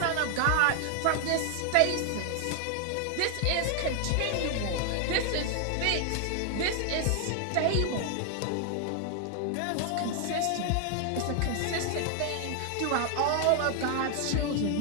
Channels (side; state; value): both; different; correlation 0.00